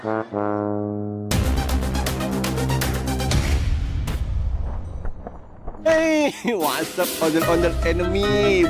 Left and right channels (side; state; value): both; identical; correlation 1.00